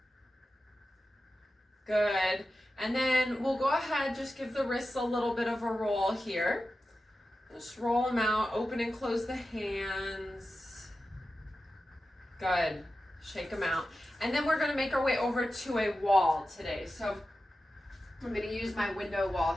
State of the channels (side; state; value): both; normal; correlation 0.93